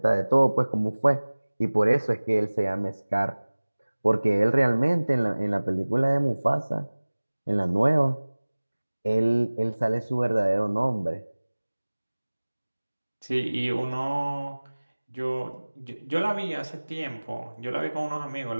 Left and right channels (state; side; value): inverted; both; correlation -1.00